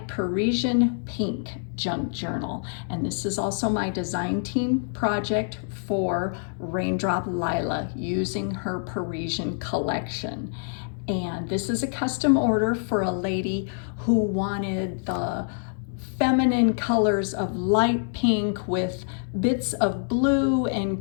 Parisian Pink junk journal, and this is also my design team project for Raindrop Lila using her Parisian Collection. And this is a custom order for a lady who wanted the feminine colors of light pink with bits of blue and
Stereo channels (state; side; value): silent; right; digital silence